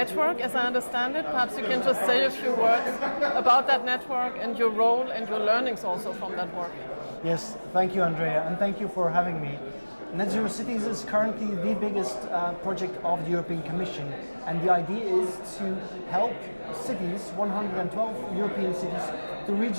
as I understand it. Perhaps you can just say a few words about that network and your role and your learnings also from that work. Yes, thank you Andrea, and thank you for having me. Net Zero Cities is currently the biggest project of the European Commission, and the idea is to help cities, 112 European cities, to reach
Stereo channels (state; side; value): inverted; both; correlation -1.00